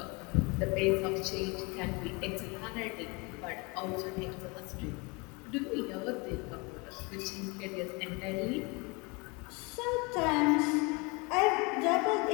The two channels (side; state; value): right; quieter; 28.4 dB